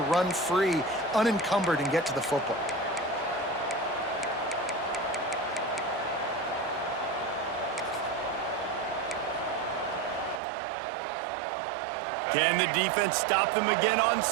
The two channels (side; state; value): left; drops out; at 10.4 s